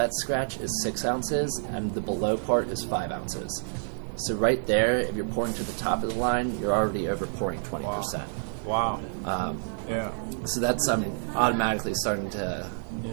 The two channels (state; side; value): silent; left; 59 dB below the other